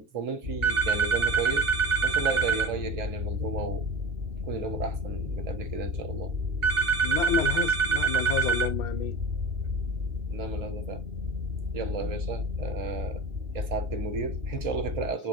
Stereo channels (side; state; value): left; late; 2.7 ms